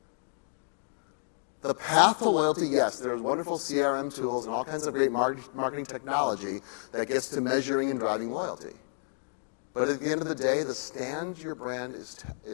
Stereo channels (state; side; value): silent; right; digital silence